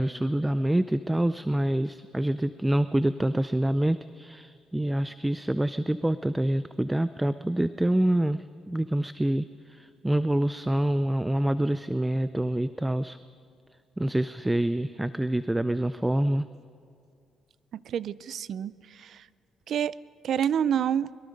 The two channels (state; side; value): normal; both; correlation 0.96